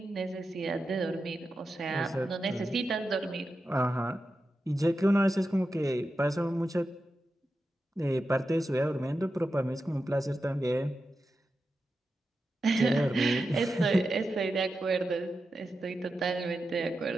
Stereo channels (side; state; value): both; normal; correlation 0.90